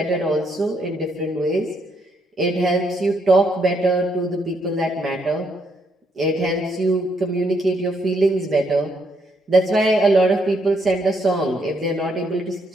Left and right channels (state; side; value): normal; both; correlation 0.74